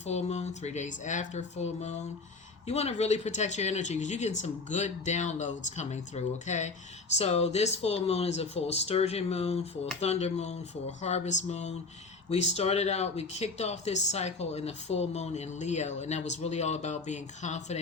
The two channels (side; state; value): right; quieter; 3.9 dB